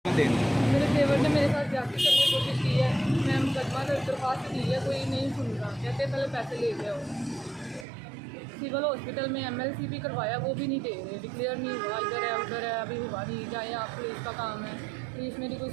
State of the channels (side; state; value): left; drops out; at 7.9 s